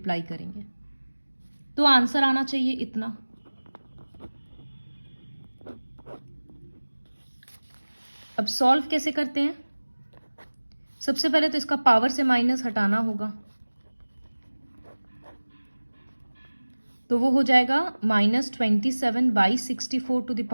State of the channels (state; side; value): inverted; both; correlation -1.00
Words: करेंगे तो आंसर आना चाहिए इतना। अब सॉल्व कैसे करते हैं, सबसे पहले तो इसका पावर से माइनस हटाना होगा, तो वो हो जाएगा -27/64 टू द